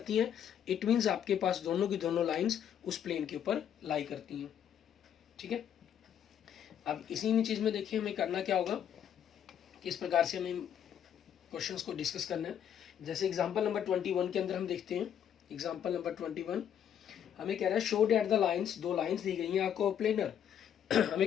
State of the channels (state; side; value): quieter; right; 9.3 dB